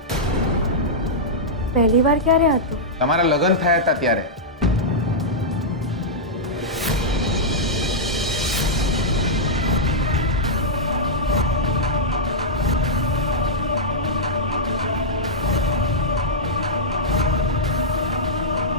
પહેલી વાર ક્યારે હતું? તમારા લગ્ન થયા હતા ત્યારે.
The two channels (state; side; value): normal; both; correlation -0.10